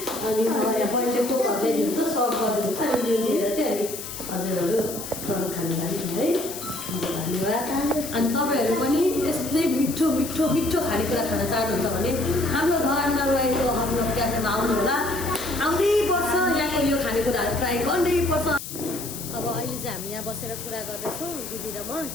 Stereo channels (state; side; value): noise; left; hiss, 9 dB below the sound